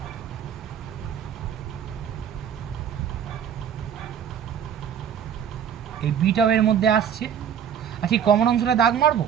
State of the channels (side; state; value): left; quieter; 8.5 dB